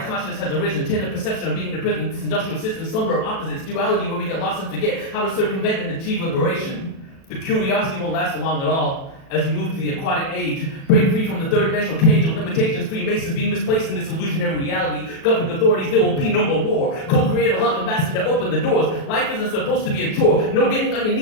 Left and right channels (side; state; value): right; late; 37 ms